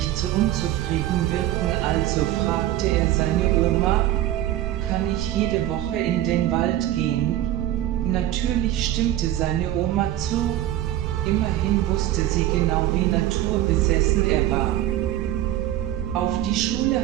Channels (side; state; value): left; quieter; 13.5 dB